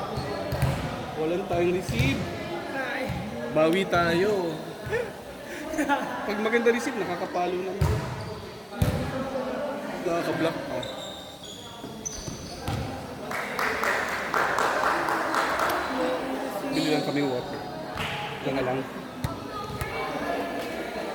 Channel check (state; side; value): identical; both; correlation 1.00